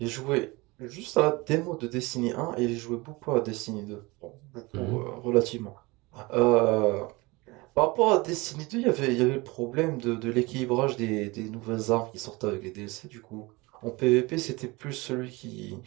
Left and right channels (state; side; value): quieter; left; 23.8 dB